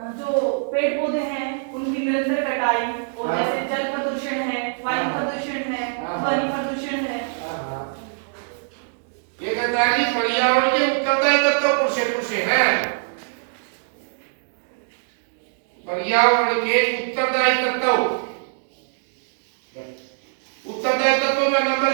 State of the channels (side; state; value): left; silent; digital silence